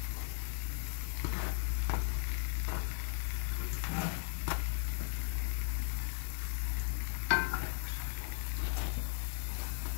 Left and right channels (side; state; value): right; silent; digital silence